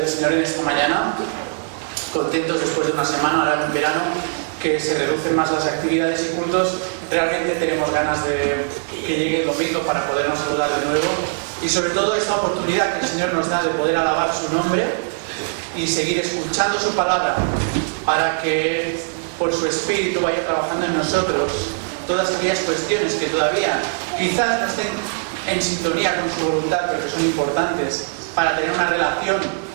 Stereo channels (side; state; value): left; silent; 65 dB below the other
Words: Señor en esta mañana. Contentos después de una semana, ahora en verano, que se reducen más las actividades y cultos. Realmente tenemos ganas de que llegue el domingo para podernos saludar de nuevo. Y sobre todo esta oportunidad que el Señor nos da de poder alabar su nombre y seguir escuchando su palabra para que por su Espíritu vaya trabajando en nosotros todas aquellas cuestiones que todavía quizás no estén en sintonía con su voluntad, pero que son importantes para tener una relación